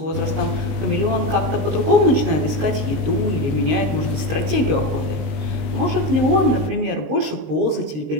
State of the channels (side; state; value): left; late; 19 ms